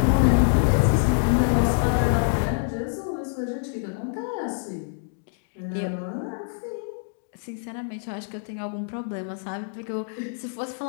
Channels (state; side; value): silent; right; digital silence